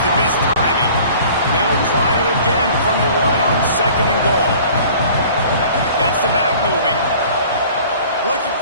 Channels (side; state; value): both; inverted; correlation -0.48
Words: the missed timing. They'll try it again from the one on second and goal. Gets the back moving. Looking